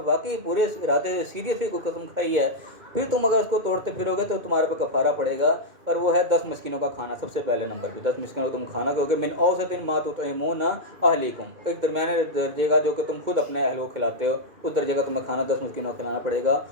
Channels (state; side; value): late; left; 2.1 ms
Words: واقعی پورے ارادے سے سیریسلی کوئی قسم کھائی ہے، پھر تم اگر اس کو توڑتے پھرو گے تو تمہارے پہ کفارہ پڑے گا، اور وہ ہے 10 مسکینوں کا کھانا. سب سے پہلے نمبر پہ 10 مسکینوں کو تم کھانا کھاؤ گے، من اوسط ما تطعمون اہلیکم، ایک درمیانے درجے کا جو کہ تم خود اپنے اہل کو کھلاتے ہو، اس درجے کا تمہیں کھانا 10 مسکینوں کو کھلانا پڑے گا.